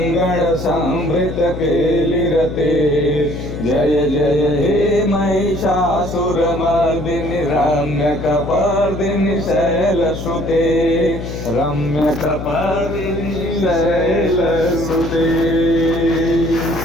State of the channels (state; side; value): noise; left; hum, 7 dB below the sound